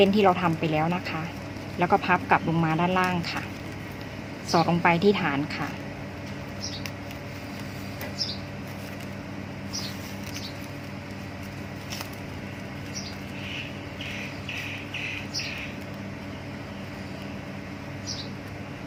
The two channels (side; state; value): both; identical; correlation 1.00